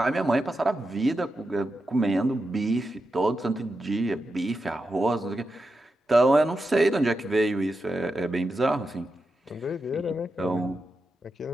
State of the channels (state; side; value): normal; both; correlation 0.88